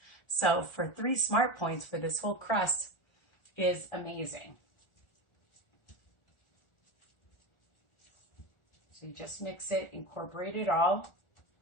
So for 3 smart points for this whole crust is amazing. So you just mix it, incorporate it all,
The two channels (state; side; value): late; right; 1.4 ms